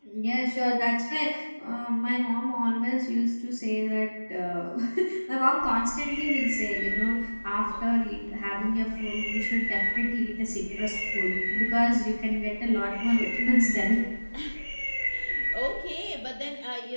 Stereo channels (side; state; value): both; inverted; correlation -1.00